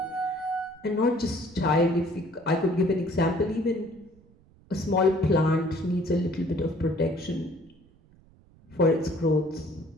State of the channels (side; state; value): right; noise; rumble, 28 dB below the sound